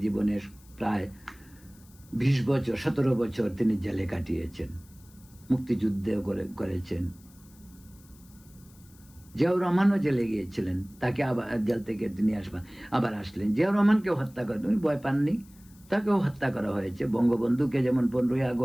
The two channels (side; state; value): left; noise; hiss, 27 dB below the sound